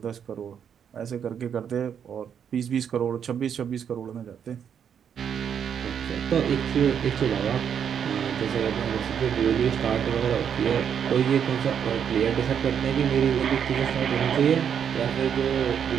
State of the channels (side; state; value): left; quieter; 8.1 dB